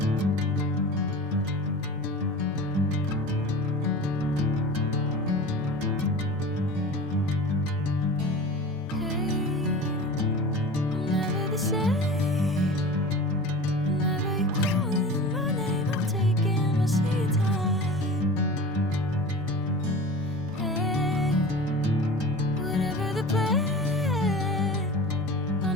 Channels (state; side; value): normal; both; correlation 0.35